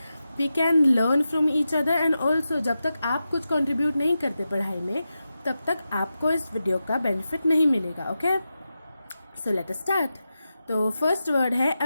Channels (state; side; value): inverted; both; correlation -0.91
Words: we can learn from each other. And also जब तक आप कुछ कंट्रीब्यूट नहीं करते पढ़ाई में, तब तक आपको इस वीडियो का बेनिफिट नहीं मिलेगा. Okay, so let us start. तो फर्स्ट वर्ड है